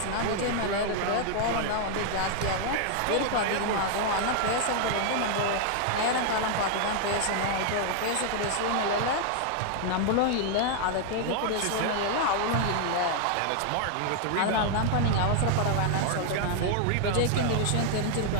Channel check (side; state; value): both; different; correlation 0.00